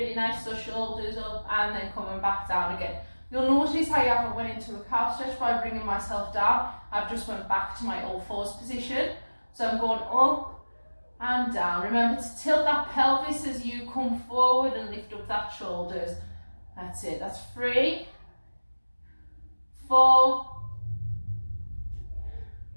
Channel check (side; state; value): both; inverted; correlation -1.00